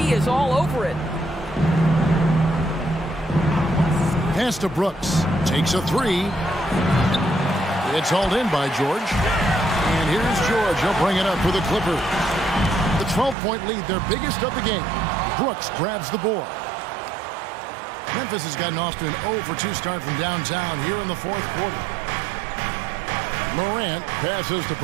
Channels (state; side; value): drops out; left; at 13.4 s